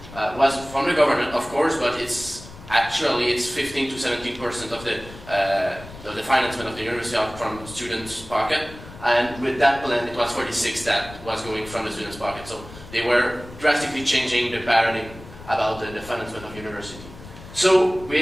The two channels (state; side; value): noise; left; rumble, 17 dB below the sound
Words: was from the government, of course, but it's 15 to 17% of the financement of the university out from students' pocket. And with that plan, it was 46 that was going from the students' pocket. So they were drastically changing the paradigm about the financement of university. So